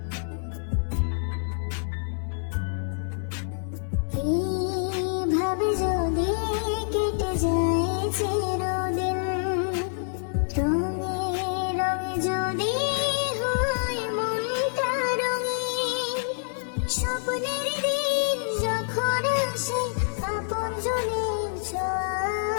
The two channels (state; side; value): silent; right; 57 dB below the other